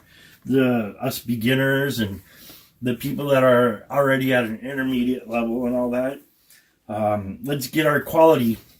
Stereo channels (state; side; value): identical; both; correlation 1.00